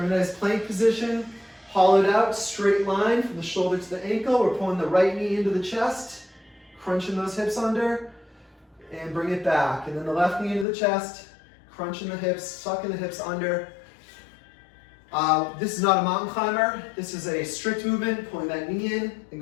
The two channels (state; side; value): drops out; right; at 10.7 s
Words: in a nice plank position, hollowed out, straight line from the shoulder to the ankle. We're pulling the right knee into the chest, crunching those hips under, and bring it back. And then the left knee into the chest, crunching the hips, sucking the hips under. This is not a mountain climber. This is a strict movement, pulling that knee in and